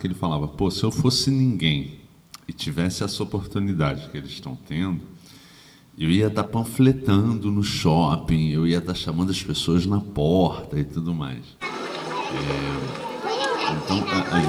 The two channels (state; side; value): identical; both; correlation 1.00